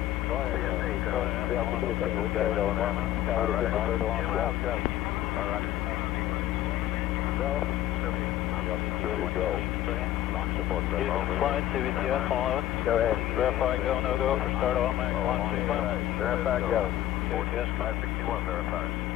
Go ahead. CSE, Go ahead. We gotta go now. All right. Go. Snoopy. Launch support. Flight CVTS 11. Go ahead. Verify go, no go for start automatic launch sequence. Verify go. CVTS 561 verified.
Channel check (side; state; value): right; quieter; 13.4 dB